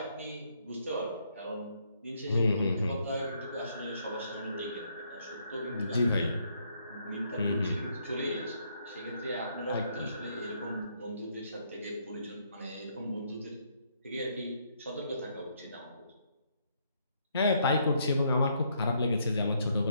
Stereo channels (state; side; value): inverted; both; correlation -0.72